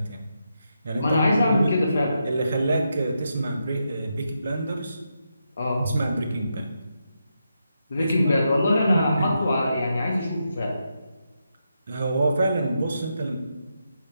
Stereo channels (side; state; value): both; inverted; correlation -0.84